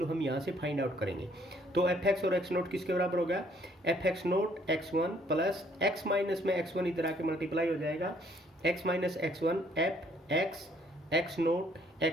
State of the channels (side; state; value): both; normal; correlation 0.64